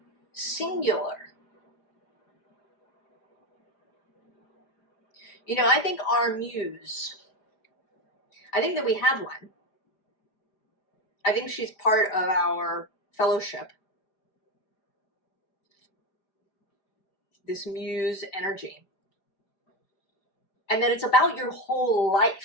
singular. I think our Muse, I think that we have one. I think she's part of our fellowship. This Muse energy. And that it's about your whole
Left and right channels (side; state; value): right; late; 4.9 ms